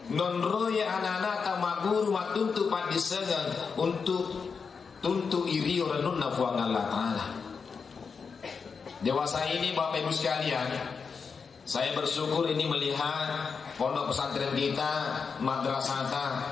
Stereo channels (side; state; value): right; quieter; 5.5 dB